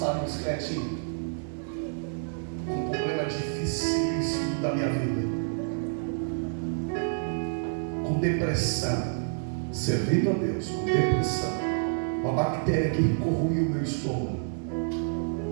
em bicicletinha. dificílimo da minha vida, com depressão, servindo a Deus, com depressão, uma bactéria que corroiu o meu estômago.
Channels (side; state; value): left; silent; 59 dB below the other